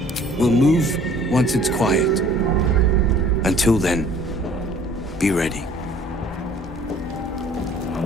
We'll move once it's quiet. Until then, be ready.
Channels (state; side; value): normal; both; correlation 0.53